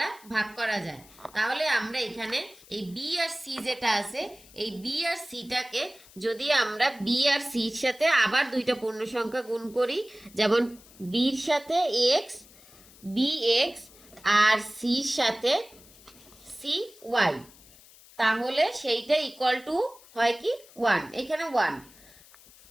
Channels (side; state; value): left; noise; hiss, 23 dB below the sound